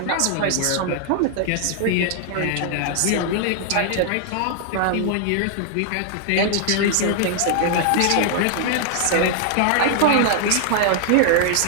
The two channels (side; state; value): both; different; correlation 0.00